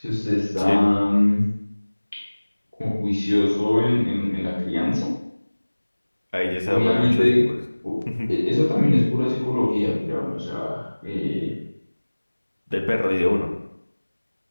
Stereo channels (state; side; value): inverted; both; correlation -1.00